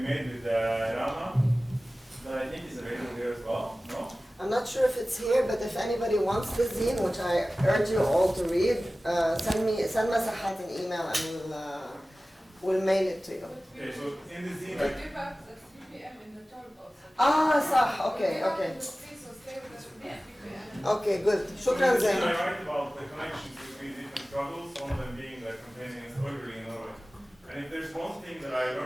made with Rana, that I think is available here as well, no? I'm not sure if it's here, but if anybody wants the zine, which I urge you all to read, send Masahat an email and we'll mail it to you. Okay, so in the scene, We do have the 3 p.m. in the talk also. Okay. Please, so stay with us for 3 p.m. Okay, good. I Shukran, Zain. write about the connections between different struggles, one of them being the campaign against ordering in Norway. And if there's one thing that I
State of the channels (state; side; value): normal; both; correlation 0.97